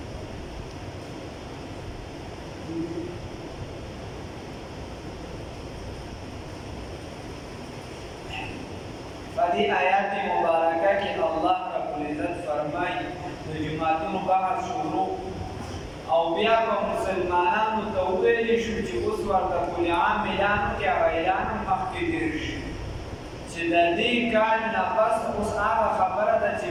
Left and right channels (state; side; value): identical; both; correlation 1.00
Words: فدي آيات مباركة کې الله رب العزت فرمایي د جماعتونو بحث شروع او بیا په مسلمانانو ته وویل شو چې اوس ورته کل عام اعلان کې اعلان مخکې تېر شي چې د دې کال نه پس اوس هغه خبره ده چې